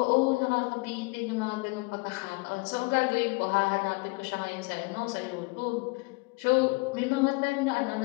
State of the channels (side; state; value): right; quieter; 27.8 dB